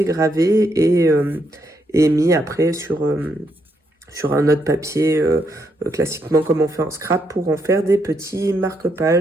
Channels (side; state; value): both; normal; correlation 0.77